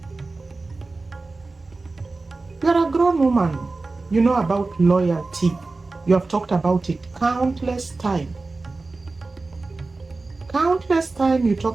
You're a grown woman. You know about loyalty. You have talked about it countless times. Countless times you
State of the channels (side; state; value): left; quieter; 3.6 dB